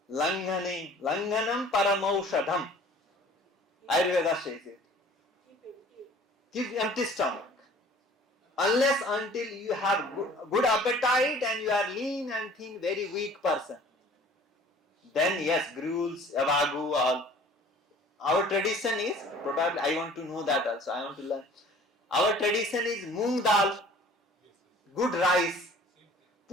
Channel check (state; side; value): normal; both; correlation 0.50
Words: Langhanam paramaushadham. Ayurveda says it. Keep empty. Keep empty stomach. Unless until you have good appetite and you are lean and thin, very weak person. Then yes, gruels, avagu, all. Our tradition is, probably I want to know that also, I want to learn. Our tradition is moong dal, good rice,